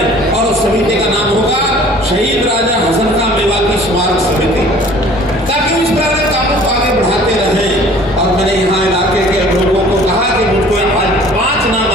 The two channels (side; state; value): both; normal; correlation 0.50